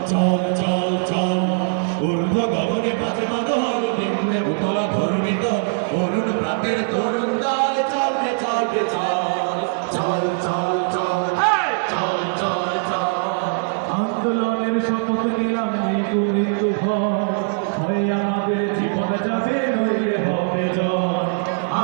চল চল চল ঊর্ধ্ব গগনে বাজে মাদল নিম্নে উতলা ধরণী তল অরুণ পাতের তরুণ দল চল রে চল রে চল চল চল চল চল চল চল আন্দোলনের শপথ নিলাম মৃত্যু ভয় আমাদের জীবন যাবে নইলে হবে জয়।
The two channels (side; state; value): left; silent; digital silence